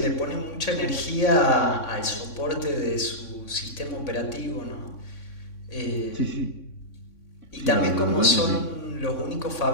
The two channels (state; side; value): late; right; 3.6 ms